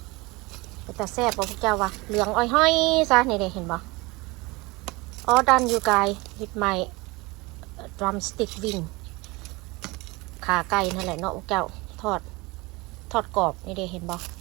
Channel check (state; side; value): quieter; left; 23.9 dB